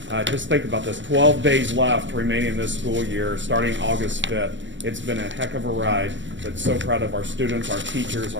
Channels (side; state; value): left; late; 0.54 ms